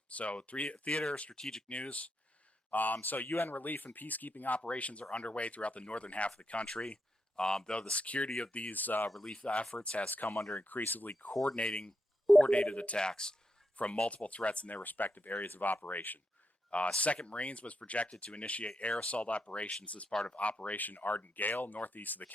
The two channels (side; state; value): both; normal; correlation 0.83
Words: So theater strategic news. So UN relief and peacekeeping operations are underway throughout the northern half of the country. Though the security of these relief efforts has come under increasingly coordinated attacks from multiple threats in their respective areas of operation. 2nd Marines was projected to initiate air assault operations as part of Operation Ardent Gale northeast of the